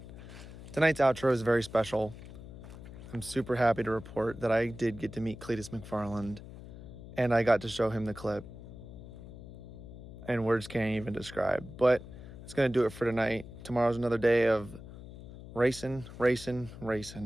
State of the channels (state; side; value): noise; left; hum, 14 dB below the sound